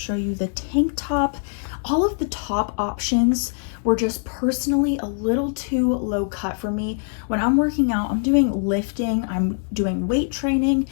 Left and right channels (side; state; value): right; silent; 64 dB below the other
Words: you the tank top. All of the top options were just personally a little too low cut for me. When I'm working out, I'm doing lifting, I'm doing weight training,